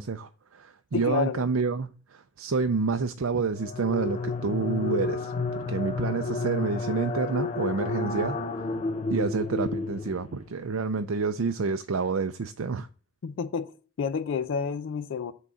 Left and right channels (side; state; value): both; normal; correlation 0.14